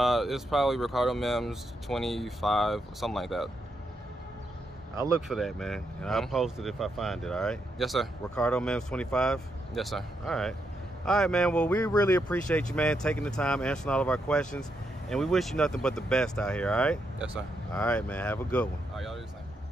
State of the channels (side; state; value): both; normal; correlation 0.81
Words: It's probably recardomims 25, something like that. I'll look for that, man, and I'll post it if I find it, all right? Yes, sir. recardomims 25? Yes, sir. All right, man. Well, we really appreciate you, man, taking the time, answering all of our questions, and we wish you nothing but the best out here, all right? Yes, sir. All right, man. Have a good one. All right, y'all do the same.